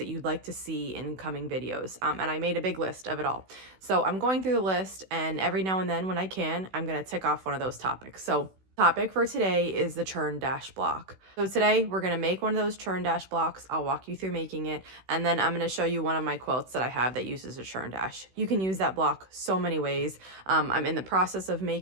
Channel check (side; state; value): left; late; 16 ms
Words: you'd like to see in coming videos, and I made a big list of it all. So I'm going through the list, and every now and then when I can, I'm going to tick off one of those topics. So topic for today is the churn dash block. So today we're going to make one of those churn dash blocks. I'll walk you through making it, and then I'm going to show you one of my quilts that I have that uses a churn dash. You can use that block so many ways. I'm in the process of